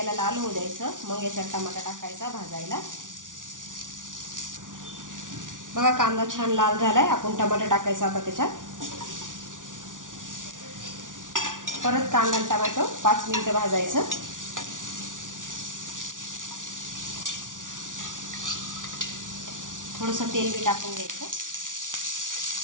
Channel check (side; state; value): left; late; 0.88 ms